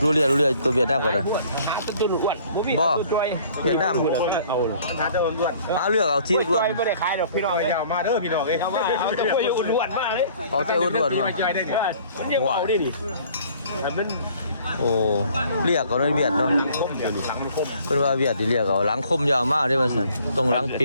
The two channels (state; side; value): inverted; both; correlation -0.56